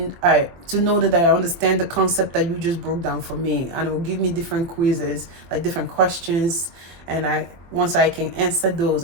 to know that I understand the concept that you just broke down for me, and it will give me different quizzes, like different questions, and once I can answer those,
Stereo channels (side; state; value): left; late; 23 ms